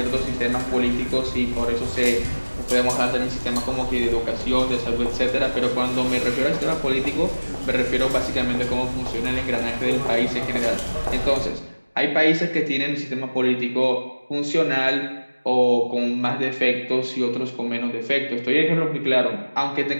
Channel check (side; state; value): both; inverted; correlation -1.00